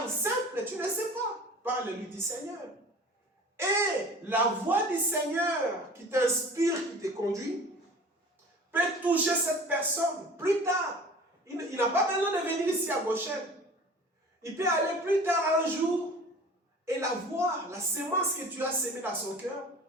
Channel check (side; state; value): both; normal; correlation 0.42